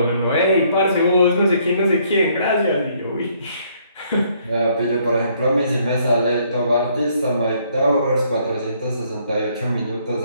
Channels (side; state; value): both; inverted; correlation -0.67